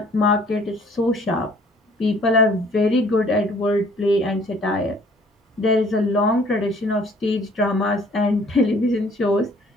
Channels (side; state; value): both; normal; correlation 0.56